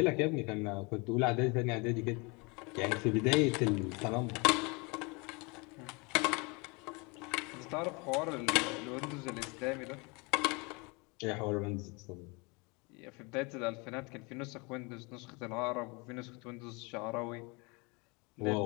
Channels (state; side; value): quieter; right; 28.8 dB